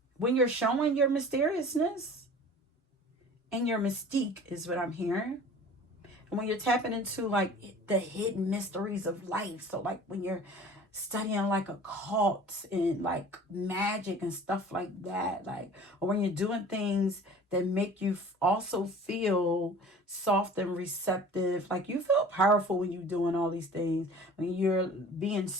you're showing your mysteriousness and your mystique is what I'm hearing. And when you're tapping into like the hidden mysteries of life, so like when you're studying like occult and like magic and stuff like that, like, or when you're doing things that make you also feel soft and receptive, like you feel powerful when you're doing all these things. When you're being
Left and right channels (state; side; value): normal; both; correlation 0.44